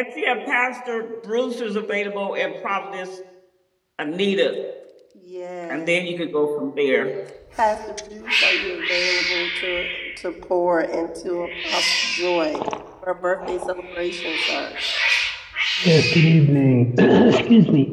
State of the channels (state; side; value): identical; both; correlation 1.00